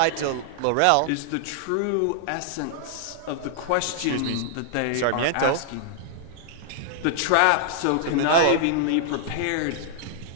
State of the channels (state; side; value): different; both; correlation -0.01